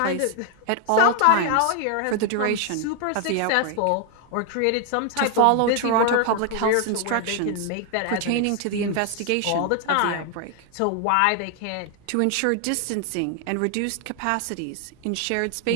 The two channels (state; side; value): different; both; correlation 0.01